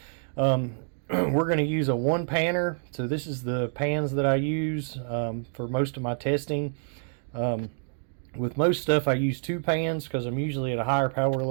We're going to use a one panner, so this is the pans that I use for most of my testing. With most stuff I use two pans because I'm usually at a higher power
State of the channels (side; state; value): left; silent; digital silence